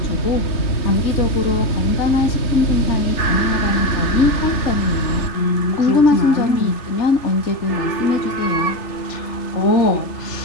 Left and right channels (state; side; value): late; right; 3.4 ms